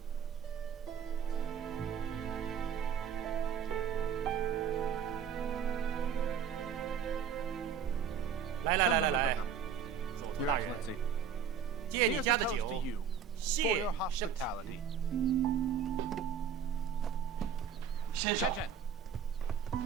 Come. Your Excellency, here's a toast to you for your hospitality. Chen!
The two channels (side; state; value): left; quieter; 7.3 dB